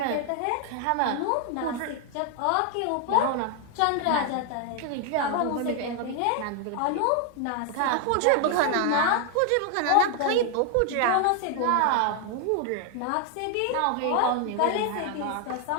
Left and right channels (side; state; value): both; different; correlation 0.00